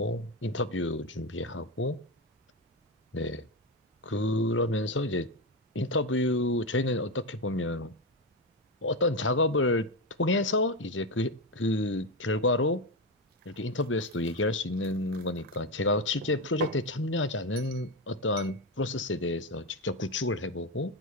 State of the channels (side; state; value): both; normal; correlation 0.13